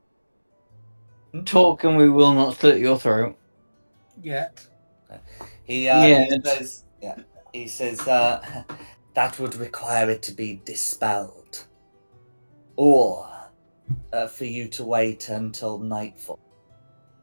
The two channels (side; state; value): both; inverted; correlation -1.00